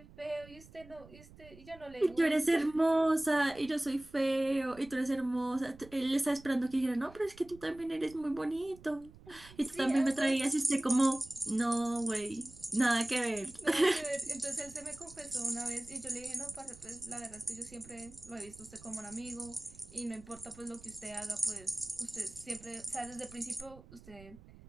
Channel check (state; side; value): noise; right; rumble, 21 dB below the sound